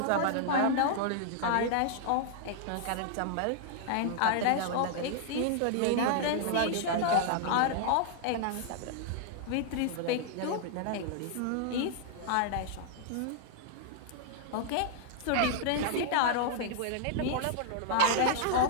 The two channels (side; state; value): both; different; correlation -0.01